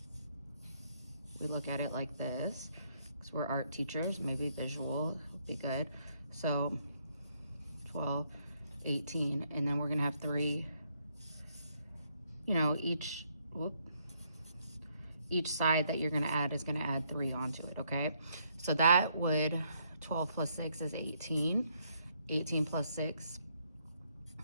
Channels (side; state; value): both; inverted; correlation -0.72